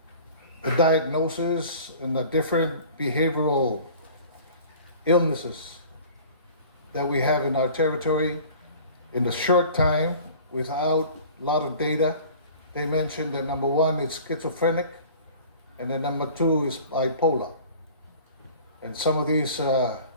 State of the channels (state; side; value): inverted; both; correlation -0.45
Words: the diagnosis and the different behavioral illnesses that we have in our territory. In the short time, without a lot of data, they mentioned that number 1 is schizophrenic, and then number 2 is bipolar. And some of these